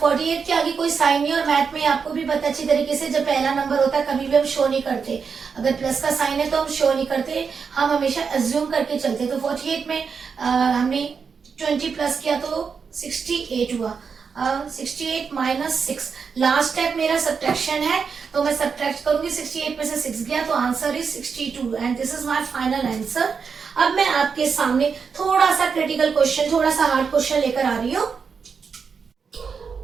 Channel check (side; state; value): left; quieter; 5.8 dB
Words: के आगे कोई साइन नहीं, और मैथ में आपको भी पता अच्छी तरीके से जब पहला नंबर होता है कभी भी हम शो नहीं करते। अगर प्लस का साइन है तो हम शो नहीं करते, हम हमेशा अज्यूम करके चलते। तो 48 में हमने 20 प्लस किया तो 68 हुआ। 68 माइनस 6, लास्ट स्टेप मेरा सब्ट्रैक्शन है तो मैं सब्ट्रैक्ट करूंगी। 68 में से 6 गया तो answer is 62 and this is my final answer. अब मैं आपके सामने थोड़ा सा क्रिटिकल क्वेश्चन, थोड़ा सा हार्ड क्वेश्चन लेकर आ रही हूँ।